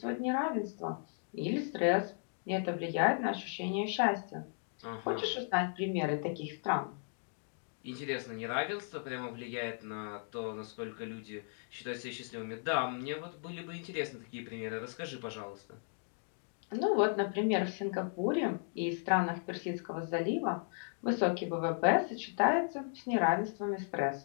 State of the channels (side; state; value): right; silent; 54 dB below the other